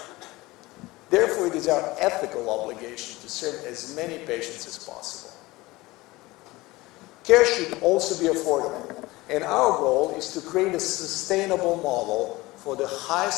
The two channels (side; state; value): right; quieter; 20.4 dB